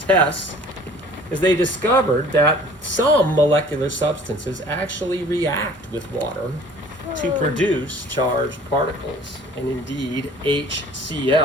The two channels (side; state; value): both; normal; correlation 0.50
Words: tests is they discovered that some molecular substances actually react with water to produce charged particles. And indeed,